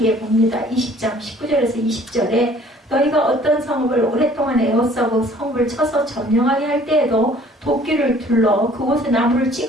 봅니다. 20장 19절에서 20절에 너희가 어떤 성읍을 오랫동안 에워싸고 성읍을 쳐서 점령하게 할 때에도 도끼를 둘러 그곳에 나무를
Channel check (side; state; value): both; normal; correlation 0.55